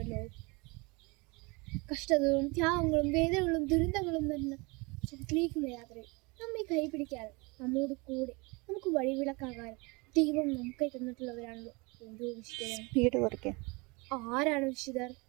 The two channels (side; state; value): left; quieter; 27.3 dB